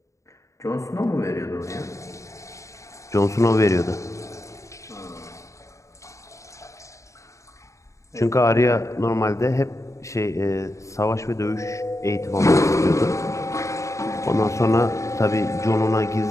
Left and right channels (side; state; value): right; late; 0.15 ms